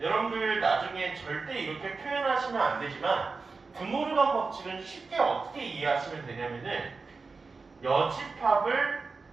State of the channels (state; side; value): quieter; left; 4.3 dB